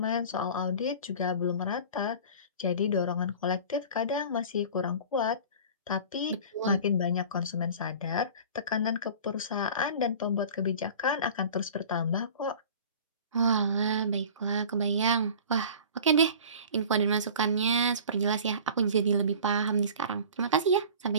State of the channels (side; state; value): both; inverted; correlation -0.41